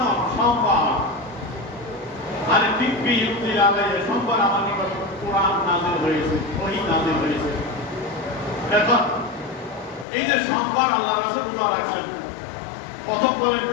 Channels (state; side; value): drops out; right; at 10.1 s